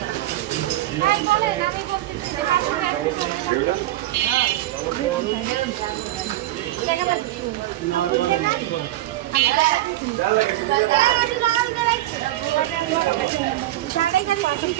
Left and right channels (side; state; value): left; quieter; 15.4 dB